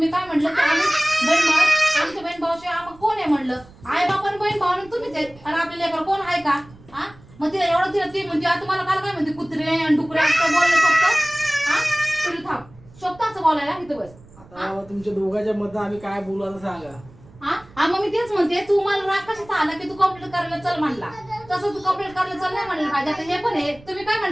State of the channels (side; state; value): right; noise; rumble, 23 dB below the sound